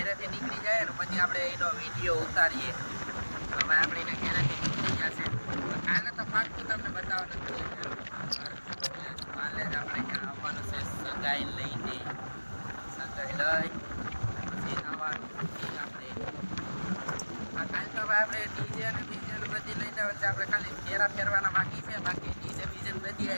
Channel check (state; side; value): inverted; both; correlation -1.00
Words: નીકળી જાય ને પછી આપણે એનો વિડીયો ઉતારીએ. હવે આપણે એને ઘેરેથી નીકળી ગયા છે. કાલે તો પાકું તમને બતાવવાનું જ કાલે જ આપણે ત્યાં આવવાનું છે સગાઈ લઈને. સગાઈ લઈ પછી આવવાનું આપણે. કાલે તો હવે આપણે ડીજે અને બીજે બધી લઈને આવે છે. આપણે ખાલી ફેરા ફેરવાના બાકી છે, બાકી ડીજે બીજે બધી